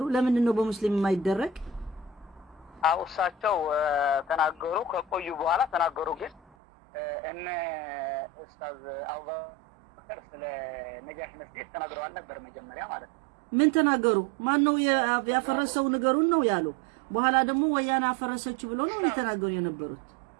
ለምንድን ነው በሙስሊም የማይደረግ አውሳቸው ተናገሩ ከቆዩ በኋላ ተናገሩ ግን እነ ኡስታዝ አቡበከር ስለ ነጃሽ መስጊድ ተናግረዋል ነበር መጀመሪያ ማለት ነው ምን ተናገሩ ማን ነው ያፈረሰው ነገሩን ነው ያሉ በኋላ ደግሞ ወያኔ አፈረሰች ብሎ ነው የተናገሩ የነበሩት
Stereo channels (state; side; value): drops out; left; at 6.4 s